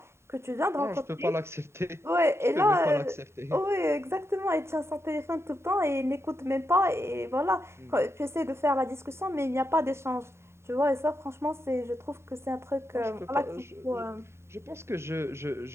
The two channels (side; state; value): left; late; 0.13 ms